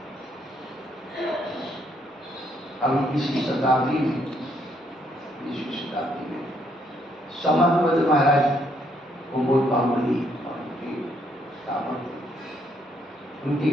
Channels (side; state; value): both; normal; correlation 0.71